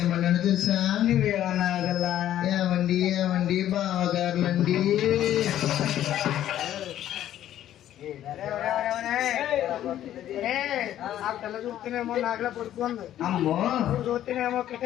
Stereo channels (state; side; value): quieter; right; 12.0 dB